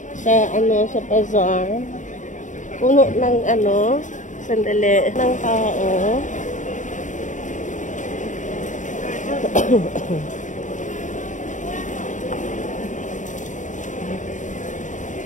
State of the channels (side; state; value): right; late; 0.36 ms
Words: sa bazaar. Puno ng sandali, ng tao.